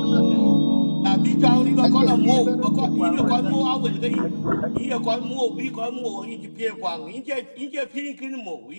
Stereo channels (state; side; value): inverted; both; correlation -1.00